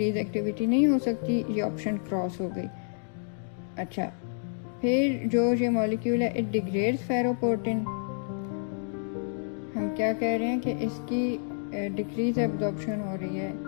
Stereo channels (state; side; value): silent; right; digital silence